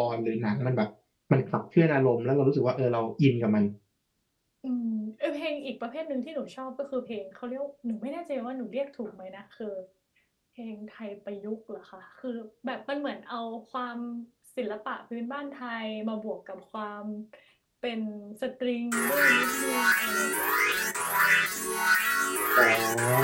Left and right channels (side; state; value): both; identical; correlation 1.00